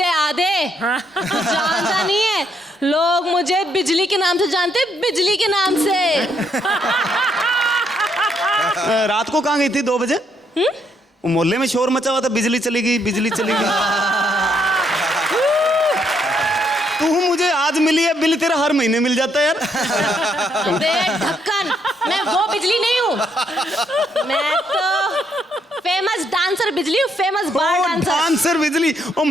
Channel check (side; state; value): both; normal; correlation 0.73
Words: आधे। जानता नहीं है, लोग मुझे बिजली के नाम से जानते, बिजली के नाम से। रात को कहाँ गई थी 2 बजे? मोहल्ले में शोर मचा हुआ था, बिजली चली गई, बिजली चली गई। तू मुझे आज मिली है, बिल तेरा हर महीने मिल जाता है यार। अबे ढक्कन, मैं वो बिजली नहीं हूँ, मैं तो फेमस डांसर बिजली हूँ, फेमस बार डांसर। डांसर बिजली, और